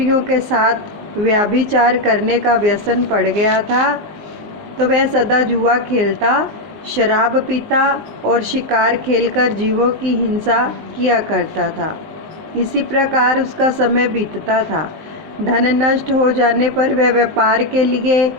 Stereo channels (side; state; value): left; late; 19 ms